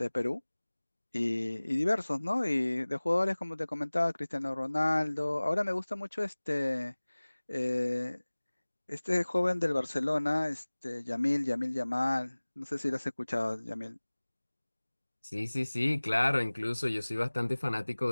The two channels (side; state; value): both; inverted; correlation -1.00